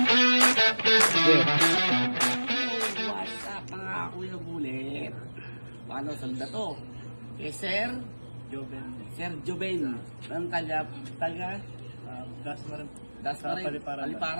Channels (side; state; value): both; inverted; correlation -1.00